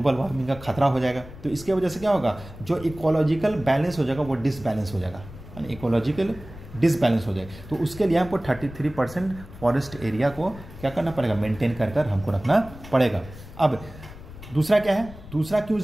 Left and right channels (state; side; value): noise; left; rumble, 16 dB below the sound